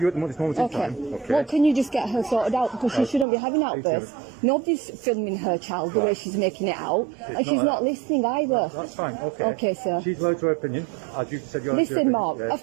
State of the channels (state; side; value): drops out; left; at 3.2 s